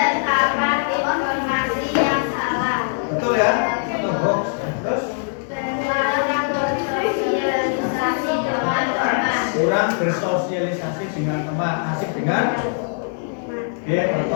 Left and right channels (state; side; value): silent; right; digital silence